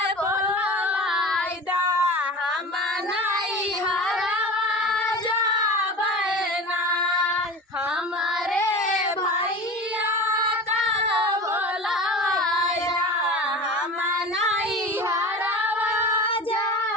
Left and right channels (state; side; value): normal; both; correlation 0.33